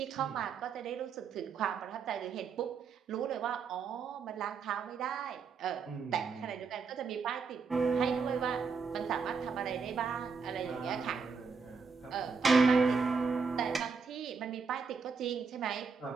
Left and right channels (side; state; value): left; quieter; 5.3 dB